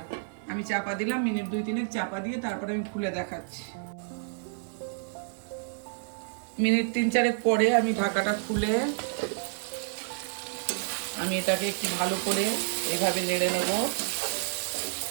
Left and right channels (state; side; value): silent; left; 58 dB below the other